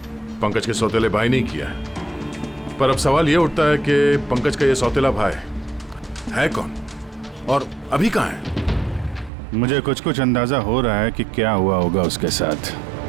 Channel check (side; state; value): left; drops out; at 9.3 s